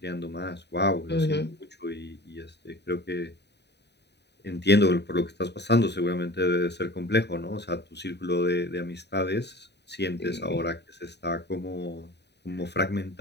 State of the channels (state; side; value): late; right; 0.50 ms